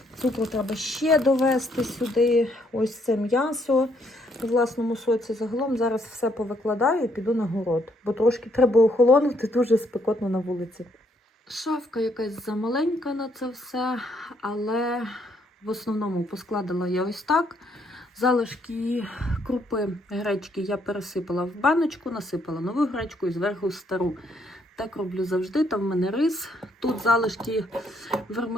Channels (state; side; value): normal; both; correlation 0.71